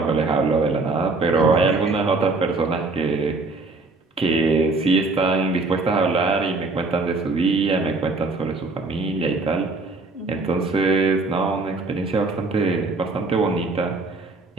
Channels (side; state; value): left; quieter; 3.5 dB